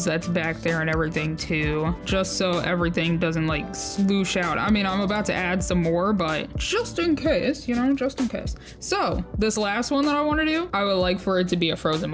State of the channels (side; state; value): both; identical; correlation 1.00